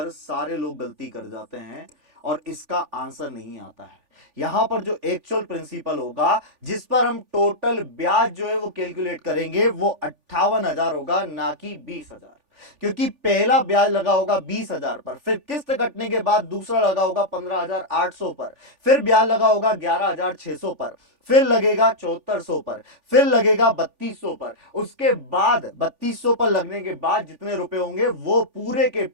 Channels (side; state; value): left; late; 3.4 ms